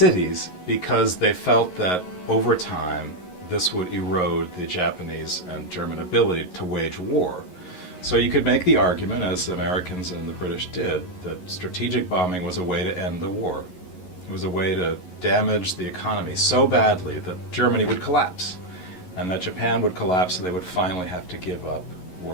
Because they felt that over time this would erode the Japanese and German ability to wage war. So you could make the argument, as the Americans and the British did, that strategic bombing was a way to end the war. It was a way to damage the economy so badly that Germany would collapse, and that Japan would collapse, so they would finally have to give up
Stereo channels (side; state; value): right; late; 11 ms